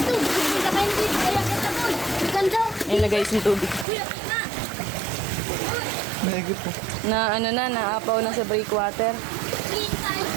Hindi ka kayo dito. Kaya kita ko. Ganda! Ayan na guys, yung tubig. Na! Na ano na, naapaw na sa breakwater. Kita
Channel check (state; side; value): drops out; left; at 3.9 s